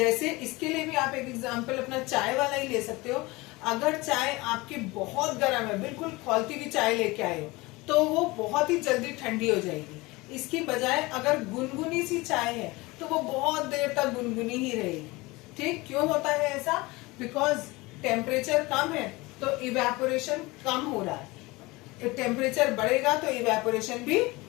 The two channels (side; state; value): right; quieter; 22.5 dB